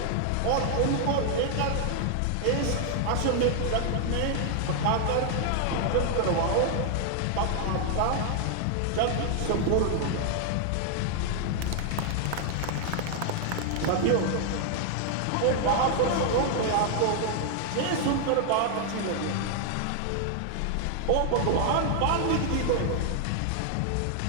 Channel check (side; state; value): both; different; correlation 0.00